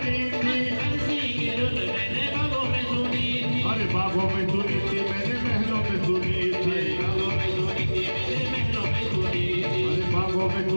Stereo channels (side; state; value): both; inverted; correlation -1.00